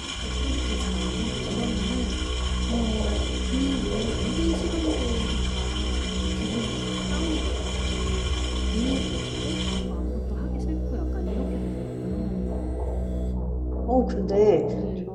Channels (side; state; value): both; identical; correlation 1.00